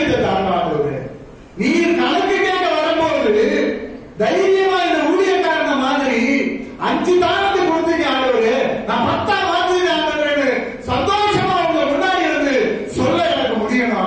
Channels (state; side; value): identical; both; correlation 1.00